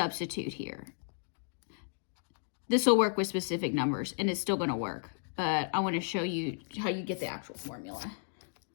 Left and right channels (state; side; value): silent; right; digital silence